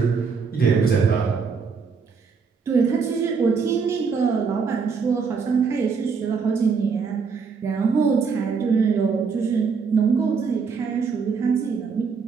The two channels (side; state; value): left; quieter; 5.5 dB